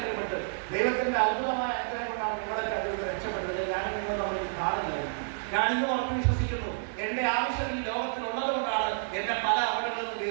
പെട്ട് ദൈവത്തിന്റെ അത്ഭുതമായ അനുഗ്രഹം കൊണ്ടാണ് നിങ്ങളൊക്കെ അതിൽ രക്ഷപ്പെട്ടത്. ഞാനും നിങ്ങൾ നമ്മൾ കാണുന്നില്ലായിരുന്നു. ഞാനിന്ന് ഉറപ്പ് വിശ്വസിക്കുന്നു, എന്റെ ആവശ്യം ഈ ലോകത്തിലുള്ളത് കൊണ്ടാണ് എന്നെ പല അപകടങ്ങളിൽ നിന്ന്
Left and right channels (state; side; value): silent; left; digital silence